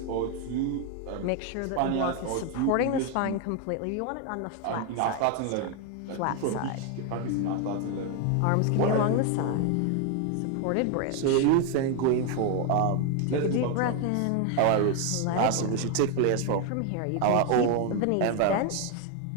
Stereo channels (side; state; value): both; different; correlation 0.01